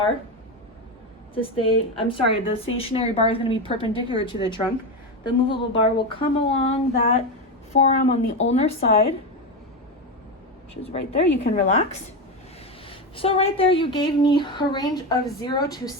to stay, the stationary bar is going to be perpendicular to the trunk. The movable bar will come along that forearm on the ulnar side, which is right there. You can relax. So right there, you gave me a range of 0 to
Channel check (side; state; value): both; normal; correlation 0.15